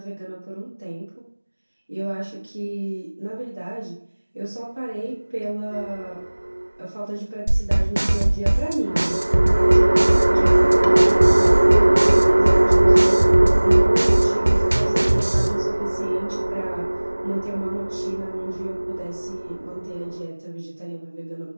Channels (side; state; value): both; inverted; correlation -1.00